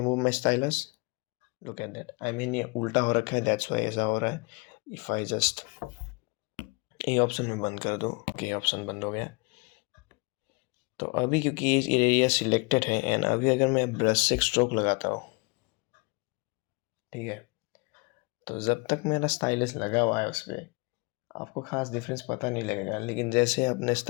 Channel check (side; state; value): right; quieter; 28.6 dB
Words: my stylus, look at that, I mean ये उल्टा हो रखा है, दैट्स वाई ऐसा हो रहा है। इफ़ आई जस्ट ये ऑप्शन में बंद कर दूँ, ये ऑप्शन बंद हो गया। तो अभी क्योंकि ये एरिया सिलेक्टेड है एंड अभी अगर मैं ब्रश से स्ट्रोक लगाता हूँ, ठीक है, तो जब तक मेरा स्टाइलिस लगा हुआ है उस पर आपको खास डिफरेंस पता नहीं लगेगा, लेकिन जैसे आपने